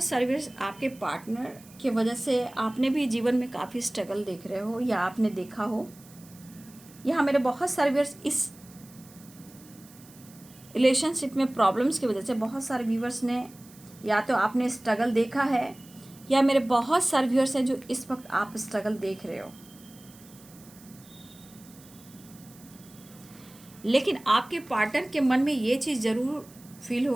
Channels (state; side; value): noise; right; hiss, 23 dB below the sound